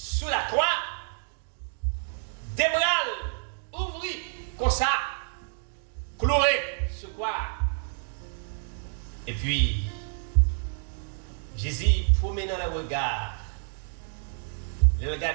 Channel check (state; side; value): silent; left; 59 dB below the other